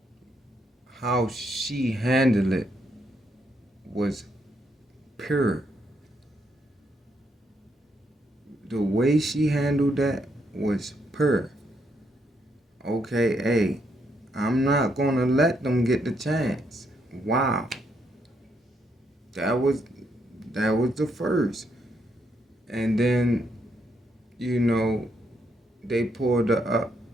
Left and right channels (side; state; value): both; normal; correlation 0.76